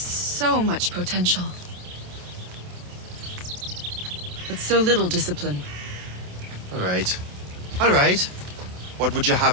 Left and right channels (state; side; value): late; left; 28 ms